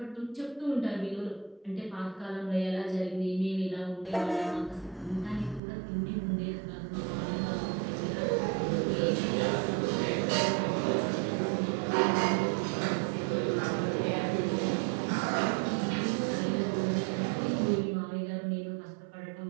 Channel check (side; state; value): left; drops out; at 5.6 s